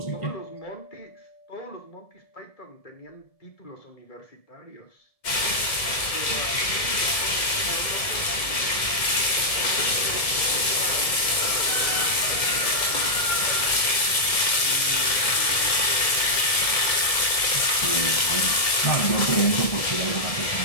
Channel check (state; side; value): late; right; 1.7 ms